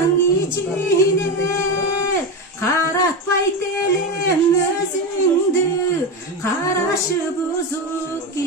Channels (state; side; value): normal; both; correlation 0.17